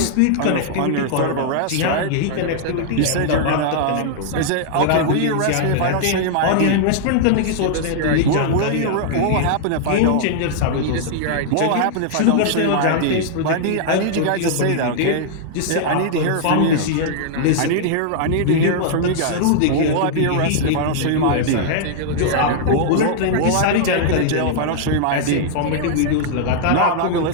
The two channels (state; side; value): different; both; correlation -0.01